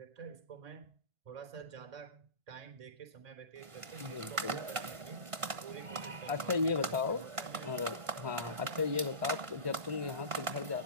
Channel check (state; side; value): late; left; 1.5 ms